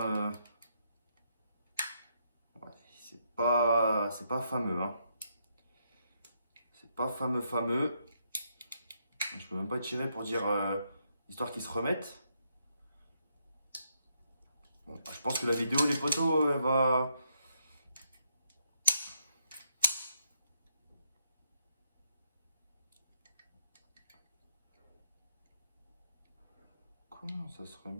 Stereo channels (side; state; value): both; inverted; correlation -0.76